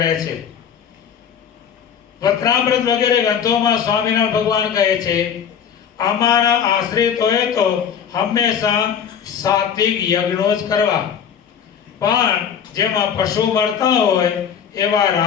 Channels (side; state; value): right; quieter; 7.9 dB